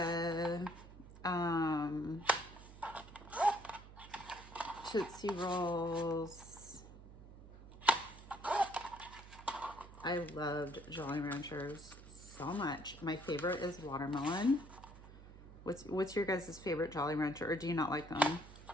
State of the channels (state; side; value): noise; right; hum, 17 dB below the sound